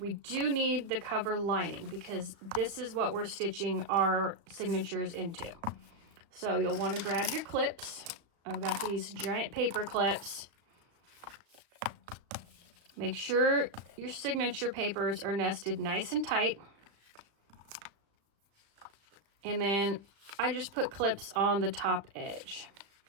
do need the cover lining because this is what we're stitching our signatures into. So you'll want to grab your clips. I've got these giant paper clips. Make sure your signature papers are nested nice and tight. And then I just put clips on the top edge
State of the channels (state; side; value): late; left; 36 ms